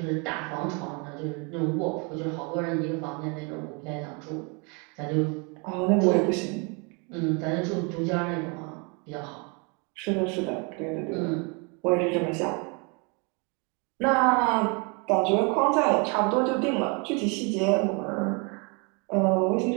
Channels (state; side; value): quieter; left; 32.8 dB